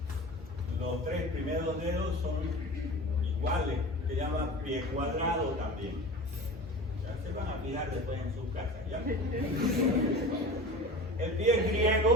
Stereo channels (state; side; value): normal; both; correlation 0.35